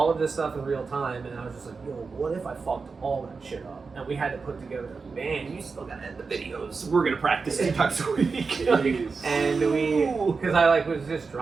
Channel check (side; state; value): left; quieter; 4.7 dB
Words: of this stuff in real time, and I was just like, yo, what if I fucked all that shit up? And we had to put together a band. You still gotta edit the videos. We're gonna practice 2 times a week. And we, because I like was just